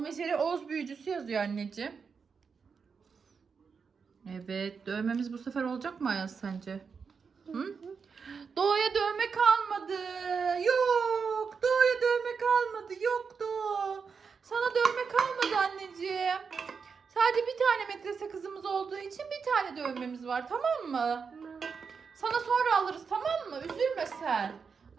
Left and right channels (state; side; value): quieter; left; 5.7 dB